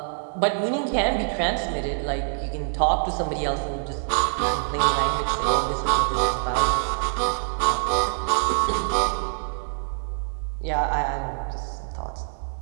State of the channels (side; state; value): left; silent; 62 dB below the other